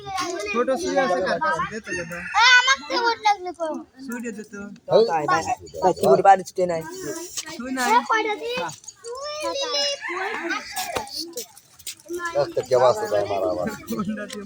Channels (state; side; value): identical; both; correlation 1.00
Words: ছোট সুই আছে কার কাছে দে তো দাদা আমাকে ভোট লাগলে কো সুই দে তো তাই কি করে বাড়ি ছুটে নাই সুই নাই কয়টা দি একটা কে বাসে ভাই মারা আবার কোনটা দিয়ে